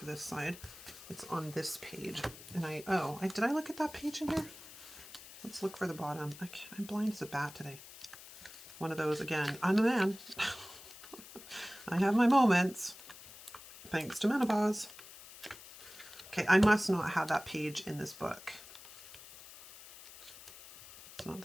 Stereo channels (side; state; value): left; noise; hiss, 17 dB below the sound